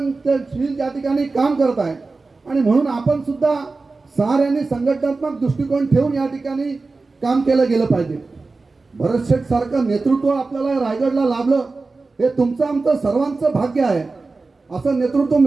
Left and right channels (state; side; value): quieter; left; 3.8 dB